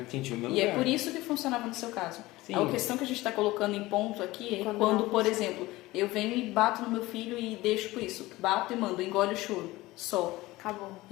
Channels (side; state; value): right; quieter; 19.1 dB